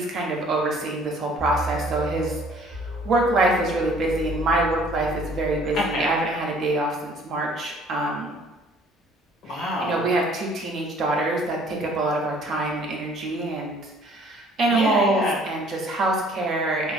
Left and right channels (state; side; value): normal; both; correlation 0.56